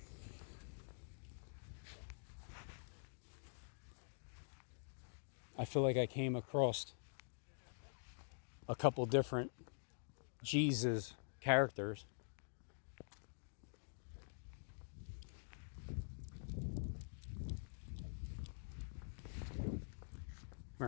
I feel like I came across a couple different Jesus characters. Come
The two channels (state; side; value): silent; right; digital silence